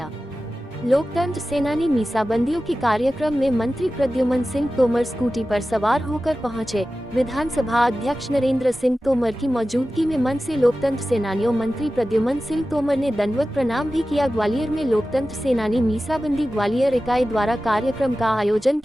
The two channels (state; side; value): normal; both; correlation 0.95